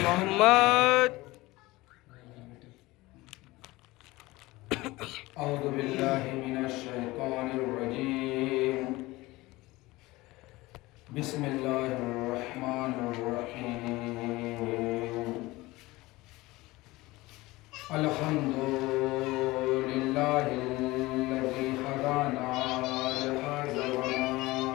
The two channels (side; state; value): right; quieter; 20.2 dB